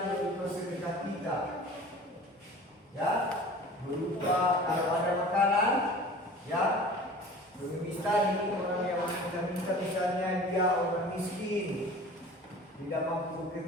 berupa sedekah kita. Ya, berupa kalau ada makanan, ya. Pengemis tadi orang yang minta misalnya dia orang miskin, tidak mampu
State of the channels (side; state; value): both; normal; correlation 0.42